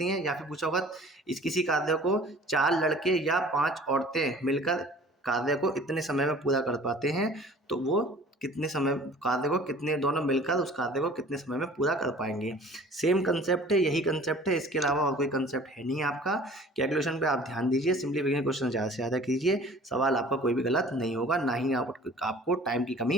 हैं, या फिर पूछा होगा इस किसी कार्य को 4 लड़के या 5 औरतें मिलकर कार्य को इतने समय में पूरा कर पाते हैं, तो वो कितने समय कार्य को, कितने दोनों मिलकर उस कार्य को कितने समय में पूरा कर पाएंगे। सेम कंसेप्ट है, यही कंसेप्ट है, इसके अलावा और कोई कंसेप्ट है नहीं आपका। कैलकुलेशन पे आप ध्यान दीजिए, सिंप्लीफिकेशन क्वेश्चन ज़्यादा से ज़्यादा कीजिए, सवाल आपका कोई भी गलत नहीं होगा, ना ही आपको टाइम की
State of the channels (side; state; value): both; normal; correlation 0.48